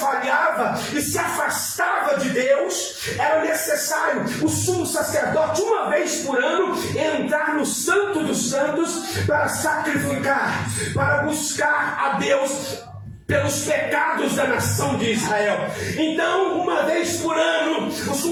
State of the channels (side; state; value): both; identical; correlation 1.00